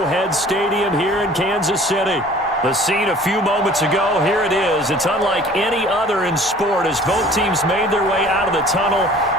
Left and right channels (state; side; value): normal; both; correlation 0.49